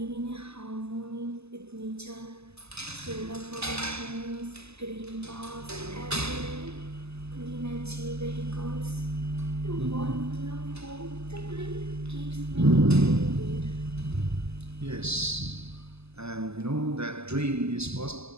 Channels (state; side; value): late; left; 0.79 ms